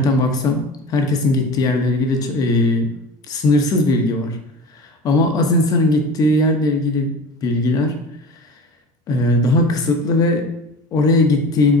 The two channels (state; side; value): normal; both; correlation 0.35